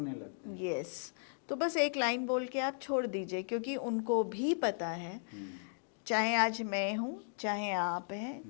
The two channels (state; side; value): silent; right; digital silence